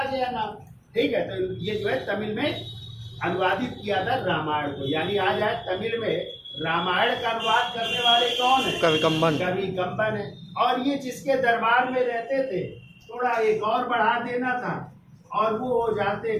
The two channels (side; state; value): both; identical; correlation 1.00